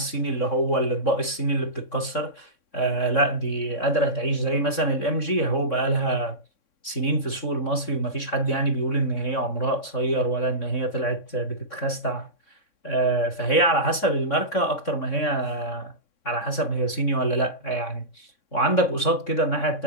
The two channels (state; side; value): late; right; 3.6 ms